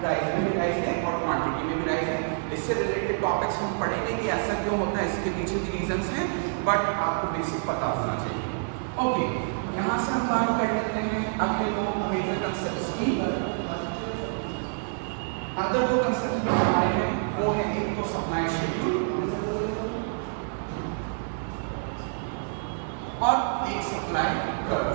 प्राइस में भी राइज है और क्वांटिटी में भी राइज है. इससे रिलेटेड टॉपिक्स हम पढ़ेंगे कि ऐसा क्यों होता है, इसके पीछे भी रीजंस हैं, बट आपको बेसिक पता होना चाहिए. ओके, यहाँ से हम बात कर लेते हैं अगले दो मेजर कंसेप्ट्स की. अदर दो कंसेप्ट जो हमारे हैं वो है एक तो सप्लाई शेड्यूल और एक सप्लाई कर्व.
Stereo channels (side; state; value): left; silent; digital silence